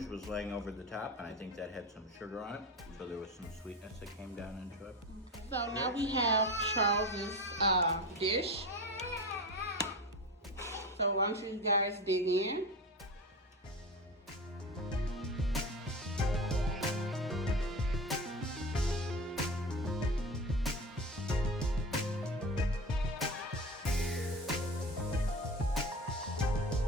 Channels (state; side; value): normal; both; correlation 0.27